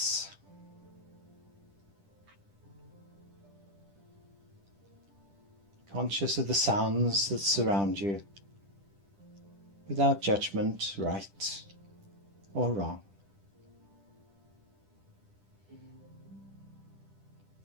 Conscious of the sounds that surround you, without judgment, right or wrong.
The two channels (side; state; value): left; late; 10 ms